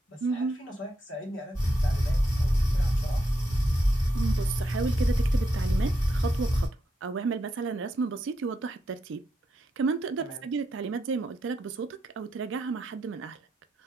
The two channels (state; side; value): normal; both; correlation 0.83